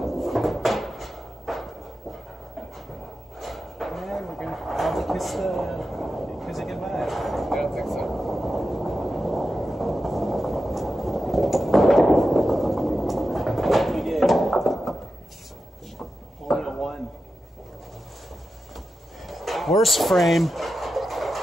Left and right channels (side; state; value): both; normal; correlation 0.91